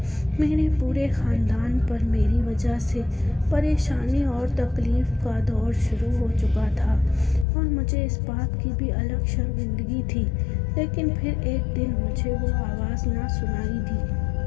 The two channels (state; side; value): drops out; right; at 7.5 s